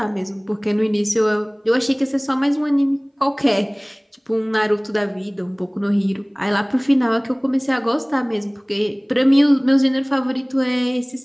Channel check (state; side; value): identical; both; correlation 1.00